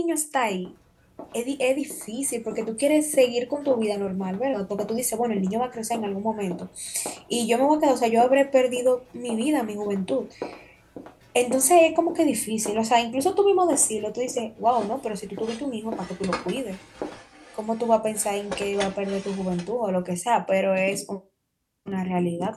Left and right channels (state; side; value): identical; both; correlation 1.00